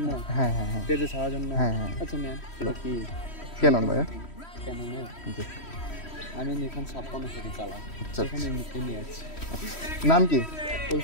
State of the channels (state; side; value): late; right; 3.1 ms